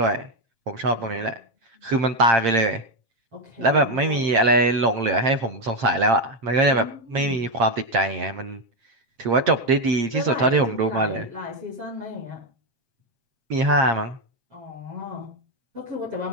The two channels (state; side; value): late; left; 7.5 ms